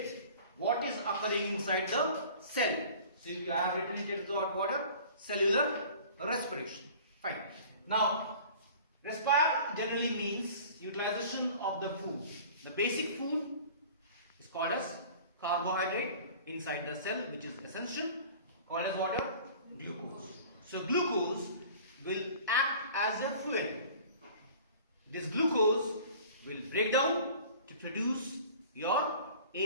what is occurring inside the cell. So you have written it as the water, cellular respiration. Fine. Now, respire generally means utilization of the food. The basic food is called as carbohydrate inside the cell, which is essential, called as water, glucose. So glucose will act as a fuel. This glucose will break down to produce your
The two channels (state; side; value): inverted; both; correlation -0.45